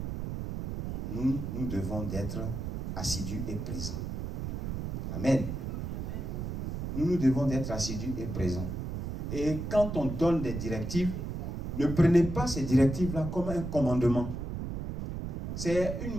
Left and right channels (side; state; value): right; noise; rumble, 4 dB below the sound